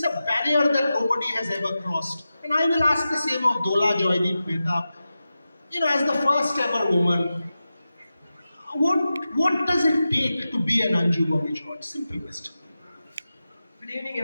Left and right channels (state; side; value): inverted; both; correlation -0.93